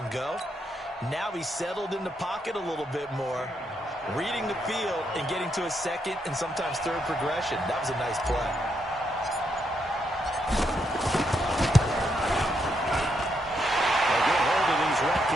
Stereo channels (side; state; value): both; normal; correlation 0.79